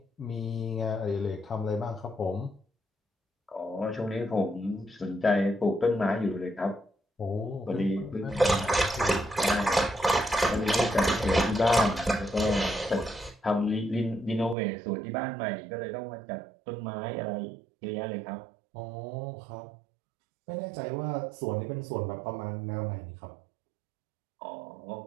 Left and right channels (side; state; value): left; drops out; at 14.6 s